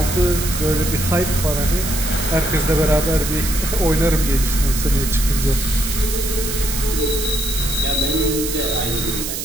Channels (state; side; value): noise; right; hiss, 5 dB below the sound